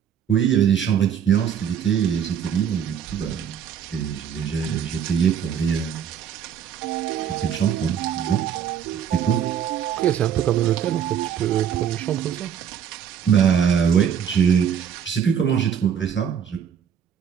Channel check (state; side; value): quieter; left; 8.4 dB